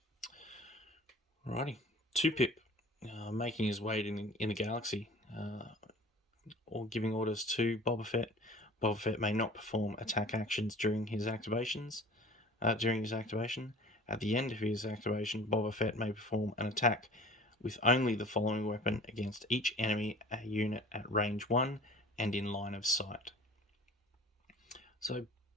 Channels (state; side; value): normal; both; correlation 0.44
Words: Alrighty, 2-Pip, making his way in the galaxy, or giving orders to Boba Fett. Boba Fett may not perform attack actions during his activations. During his activation, at the end of his activation, Boba Fett may perform an attack with only the following weapon against each enemy unit at range 1 and in line of sight. So